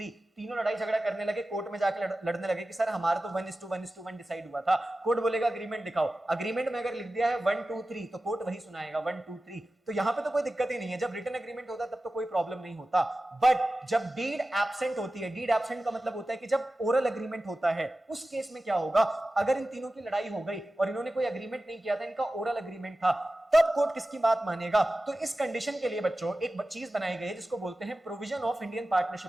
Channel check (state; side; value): normal; both; correlation 0.95